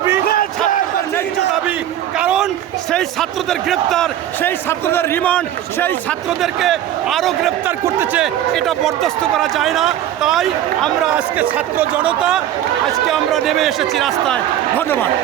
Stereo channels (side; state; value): left; quieter; 11.8 dB